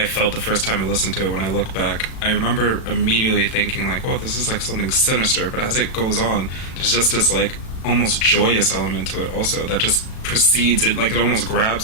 felt the first time I listened to it, when I look back, I remember immediately thinking, like, well, this is like something sinister, but as it goes on, there's just this, like, almost joyous element to it also that just precedes it, like it almost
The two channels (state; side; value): late; right; 36 ms